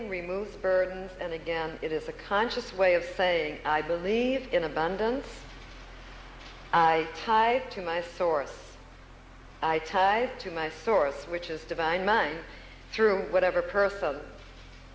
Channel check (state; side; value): identical; both; correlation 1.00